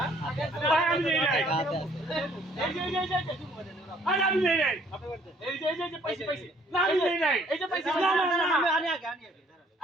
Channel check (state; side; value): normal; both; correlation 0.61